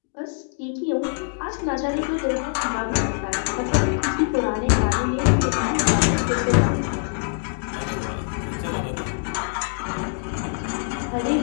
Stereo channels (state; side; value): silent; right; 63 dB below the other